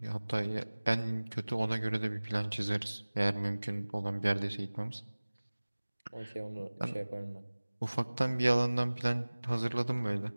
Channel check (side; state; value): both; inverted; correlation -1.00